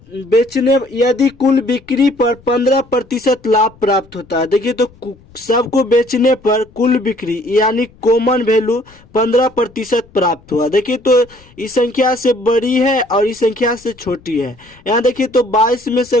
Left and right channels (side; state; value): left; noise; rumble, 27 dB below the sound